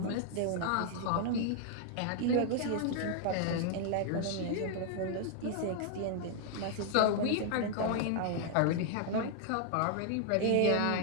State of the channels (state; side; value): different; both; correlation 0.00